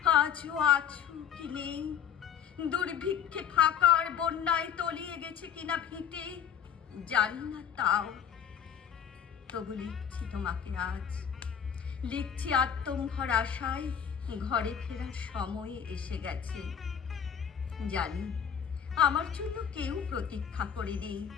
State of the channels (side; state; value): right; quieter; 8.3 dB